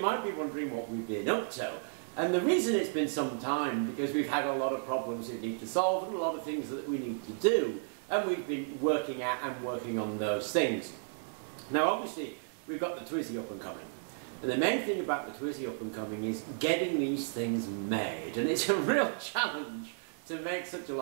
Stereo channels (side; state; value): left; silent; digital silence